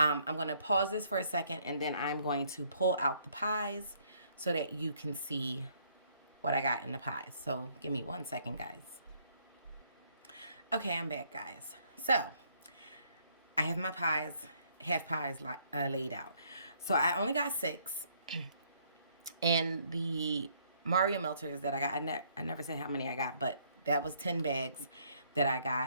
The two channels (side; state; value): both; inverted; correlation -0.67